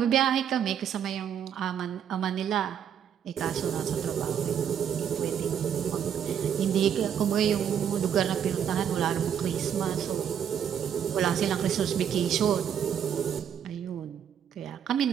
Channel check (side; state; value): left; quieter; 8.7 dB